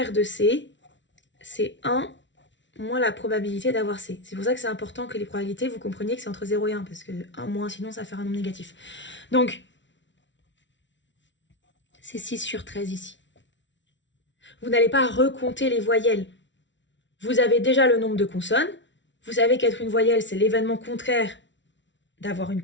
de C, c'est 1 moins la probabilité d'avoir C. C'est pour ça que c'est important que les probabilités, vous compreniez que c'est entre 0 et 1, parce que 1 moins, sinon ça va faire un nombre négatif. Donc, c'est 6 sur 13 ici. Vous n'allez pas recompter les voyelles. Vous avez déjà le nombre de consonnes. Vous savez qu'être une voyelle, c'est l'événement contraire d'avoir une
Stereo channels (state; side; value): late; right; 0.54 ms